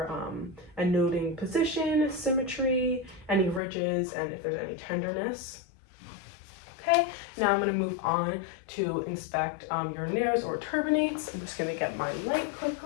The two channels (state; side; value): drops out; right; at 3.6 s